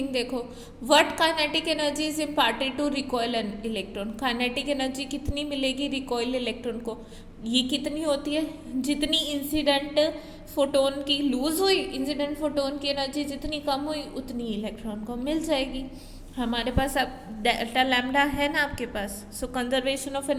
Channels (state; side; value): identical; both; correlation 1.00